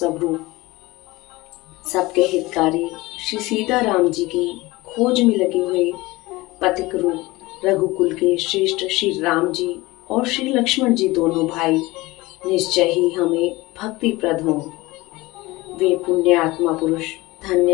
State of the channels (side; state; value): right; quieter; 20.7 dB